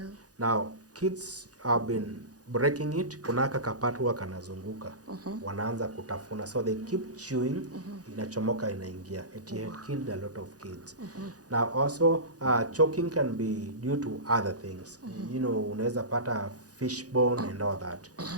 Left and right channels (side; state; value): left; late; 0.67 ms